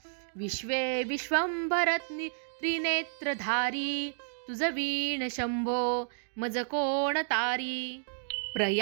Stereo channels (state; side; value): silent; left; digital silence